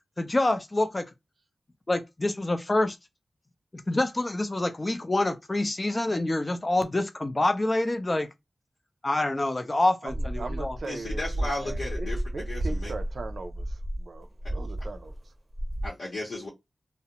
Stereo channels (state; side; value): normal; both; correlation 0.97